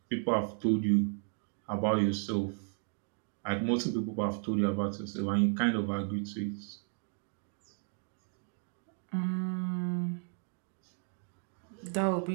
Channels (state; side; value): silent; left; 55 dB below the other